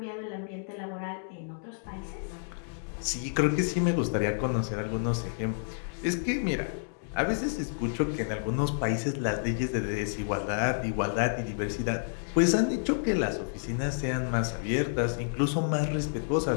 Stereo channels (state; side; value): silent; right; digital silence